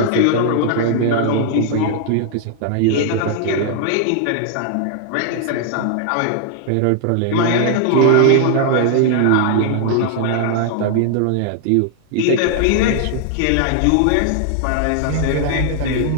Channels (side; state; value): both; different; correlation 0.00